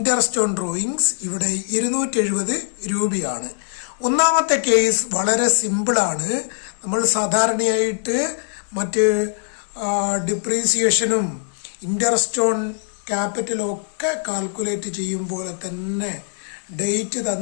ഓൺ ഡ്രോയിങ്സ് ഇവിടെ 270 രൂപയാണ്. ഒന്നാമത്തെ കേസ് വളരെ സിമ്പിളാണ്. നമ്മൾ സാധാരണയായിട്ട് മറ്റ് ഡിപ്രീസിയേഷനും ഇൻട്രസ്റ്റ് ഓൺ ക്യാപിറ്റലും ഒക്കെ കാൽക്കുലേറ്റ് ചെയ്യും പോലെ തന്നെ ഡേറ്റ്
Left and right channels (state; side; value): silent; right; digital silence